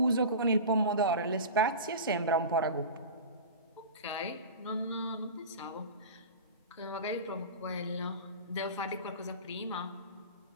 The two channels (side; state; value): both; inverted; correlation -0.31